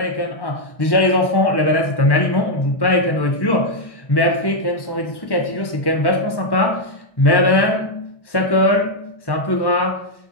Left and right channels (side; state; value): right; late; 1.1 ms